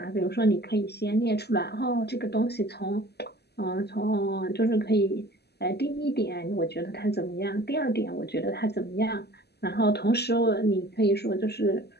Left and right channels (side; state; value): right; late; 0.48 ms